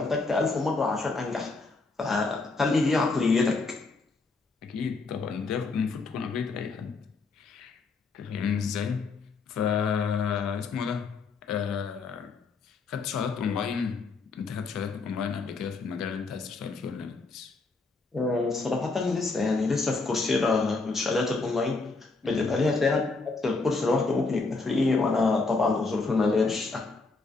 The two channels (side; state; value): right; quieter; 3.9 dB